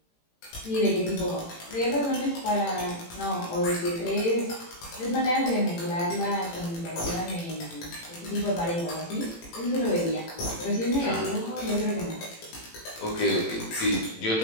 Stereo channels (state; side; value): late; right; 18 ms